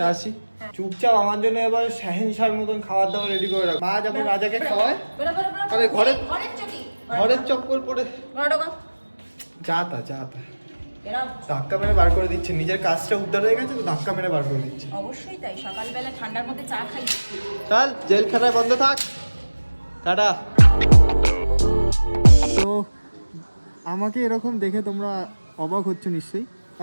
আসি। চুপচাপ আমার জন্য এবার শাহেনশার মতন খাবার দাবার রেডি করে রাখ। মা যেমন রাজাকে খাওয়ায়, আরে ঘরের চপ্পল পরে যা তা ধাক্কা মেরে বার করে দিচ্ছে। নিজের কাজটা উদ্ধার হয়ে গেছে তো ধাক্কা মেরে বার করে দিচ্ছে। অবশ্যই তাই, সকালবেলা ঠান্ডার মধ্যে চা খাই। চল জেলখানায় বন্ধ থাক, টাটা। তো আমাকে এরকম দেখে তোমরা অবাক হচ্ছ নিশ্চয়ই।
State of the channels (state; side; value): inverted; both; correlation -1.00